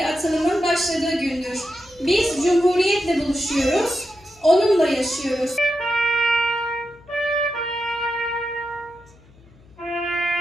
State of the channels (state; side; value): noise; left; hum, 27 dB below the sound